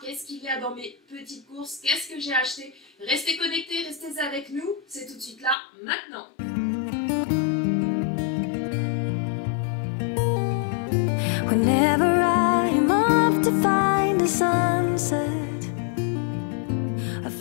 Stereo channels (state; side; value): drops out; right; at 5.6 s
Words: qu'est-ce qu'il y a dans mes petites courses, qu'est-ce que j'ai acheté, restez connectés, restez avec nous. C'est tout de suite là, maintenant. Whenever I'm off to find a sunset, a